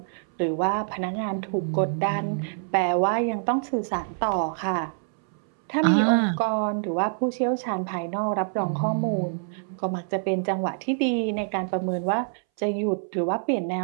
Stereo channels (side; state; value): left; silent; 61 dB below the other